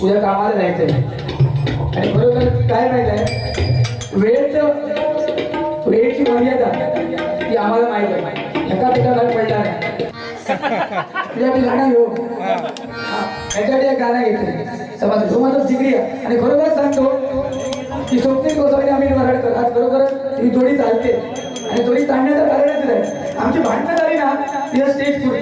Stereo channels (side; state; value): both; identical; correlation 1.00